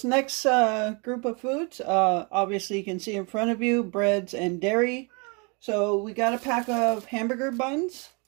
next group of foods, obviously you can see in front of you, breads and dairy. So we got a pack of hamburger buns,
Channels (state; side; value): quieter; left; 32.5 dB